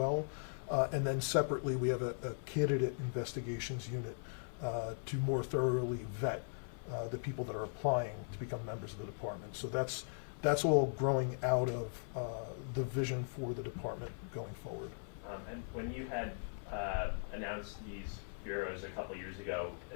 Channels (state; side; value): silent; right; 52 dB below the other